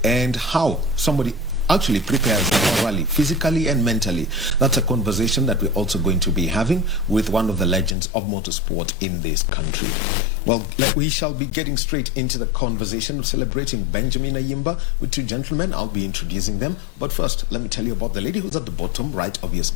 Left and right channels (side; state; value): right; drops out; at 8.0 s